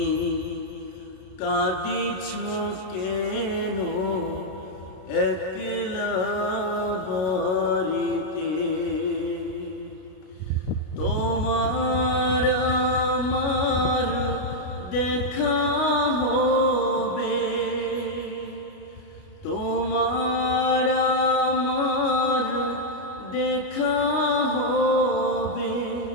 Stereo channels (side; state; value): right; late; 33 ms